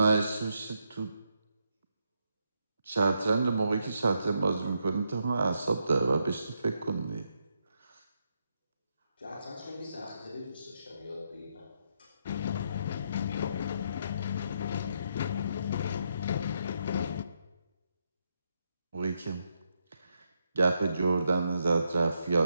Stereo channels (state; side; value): inverted; both; correlation -0.80